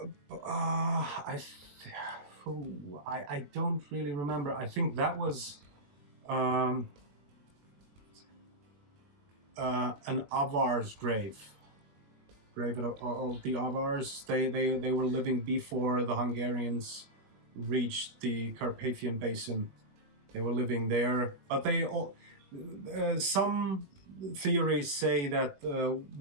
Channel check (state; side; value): late; left; 21 ms